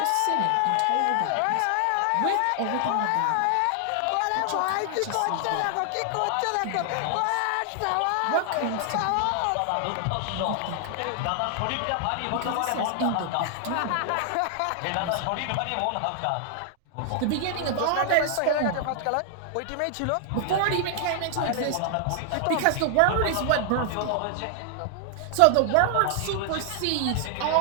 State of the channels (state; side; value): different; both; correlation 0.00